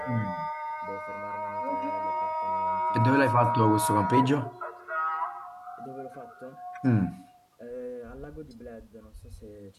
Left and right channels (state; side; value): identical; both; correlation 1.00